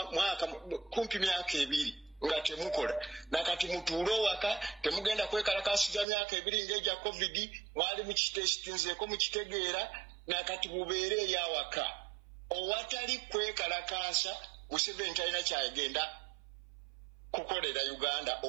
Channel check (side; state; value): left; drops out; at 6.1 s